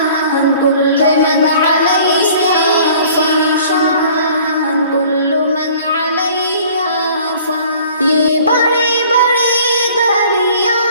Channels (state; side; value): inverted; both; correlation -0.51